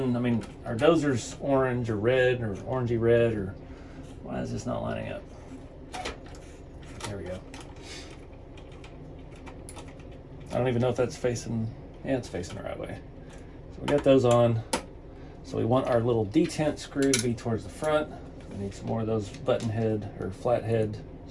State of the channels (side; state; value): both; identical; correlation 1.00